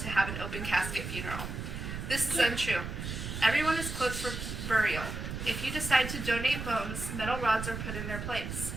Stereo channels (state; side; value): noise; right; rumble, 6 dB below the sound